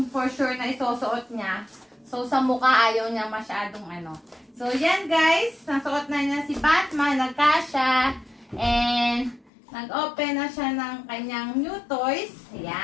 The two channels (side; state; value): right; drops out; at 9.5 s